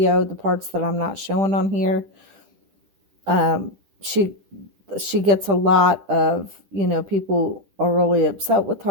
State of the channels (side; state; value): left; late; 10 ms